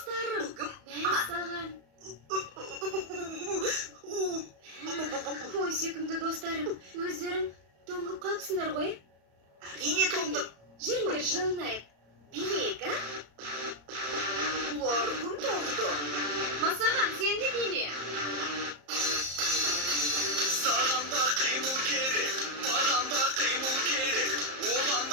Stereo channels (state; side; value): late; left; 34 ms